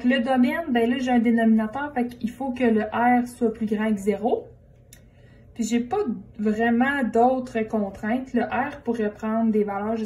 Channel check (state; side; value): identical; both; correlation 1.00